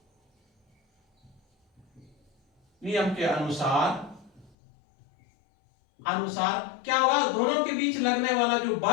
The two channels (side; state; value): right; drops out; at 4.5 s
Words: क्या होगा, दोनों के बीच लगने वाला जो